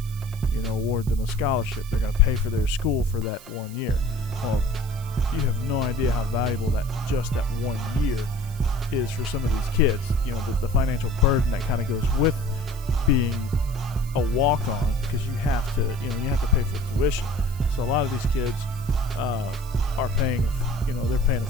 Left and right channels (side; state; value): right; noise; hiss, 19 dB below the sound